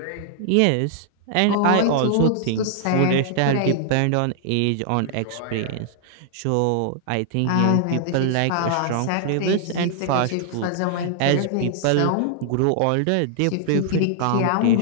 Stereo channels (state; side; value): different; both; correlation -0.01